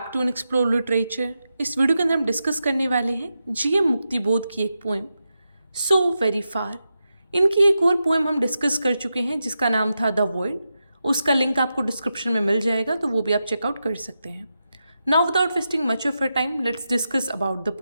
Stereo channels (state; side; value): inverted; both; correlation -0.89